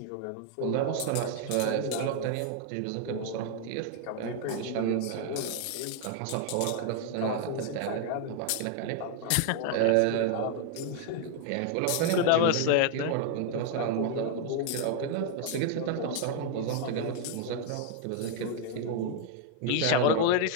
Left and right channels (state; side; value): different; both; correlation 0.00